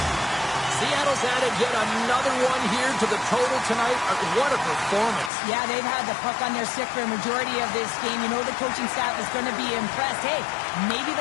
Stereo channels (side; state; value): right; drops out; at 5.3 s